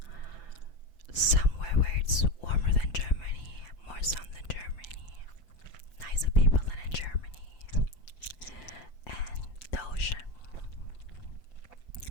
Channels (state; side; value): late; right; 6.0 ms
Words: somewhere where it's warmer than Germany, more sun than Germany, nicer people than in Germany, and the ocean.